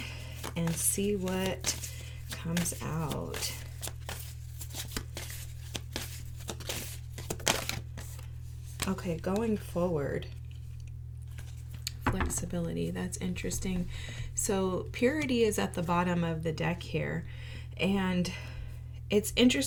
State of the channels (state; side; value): identical; both; correlation 1.00